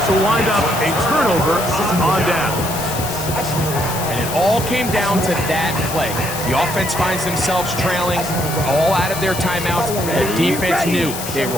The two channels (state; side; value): noise; left; hiss, 8 dB below the sound